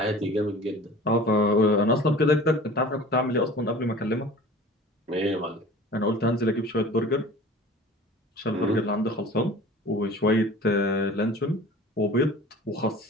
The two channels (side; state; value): both; normal; correlation 0.42